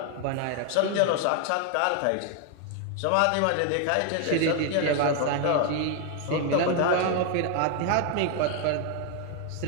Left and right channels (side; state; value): both; different; correlation 0.00